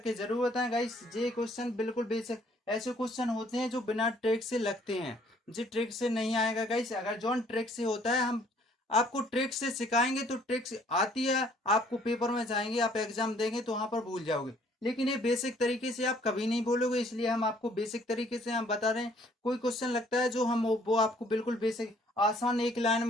जरूर बताएं गाइस। जे क्वेश्चन बिल्कुल बेसिक, ऐसे क्वेश्चन होते हैं जो बिना ट्रिक से लगते हैं, जी ट्रिक से नहीं आएगा गाइस। अगर जॉन ट्रिक से होता है, हम आपको ट्रिक्स से सिखाएंगे तो ट्रिक्स आती है, आपको पेपर में जाएंगे, आप एग्जाम देंगे तो वहां पर भूल जाओगे, लेकिन ये बेसिक तरीके से आप कभी नहीं बोलोगे, इसलिए हम आपको बेसिक तरीके से हम बता रहे हैं। कोई क्वेश्चन लगता है जो हम वो आपको बिल्कुल बेसिक आसान एक लाइन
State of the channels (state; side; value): normal; both; correlation 0.61